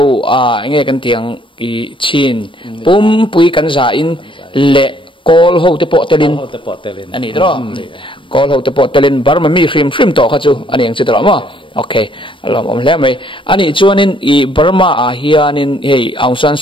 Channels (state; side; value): late; right; 0.25 ms